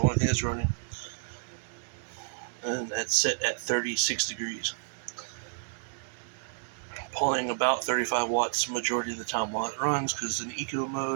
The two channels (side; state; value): left; silent; digital silence